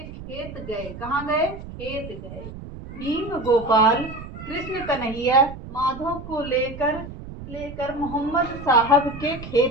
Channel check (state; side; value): noise; right; rumble, 12 dB below the sound